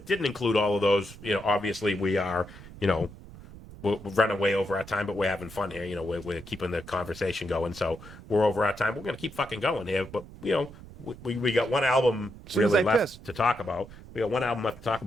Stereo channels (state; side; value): noise; right; rumble, 17 dB below the sound